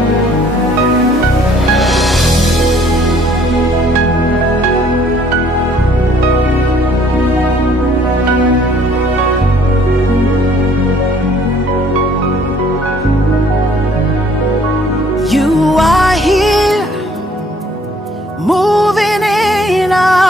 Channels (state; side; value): normal; both; correlation 0.60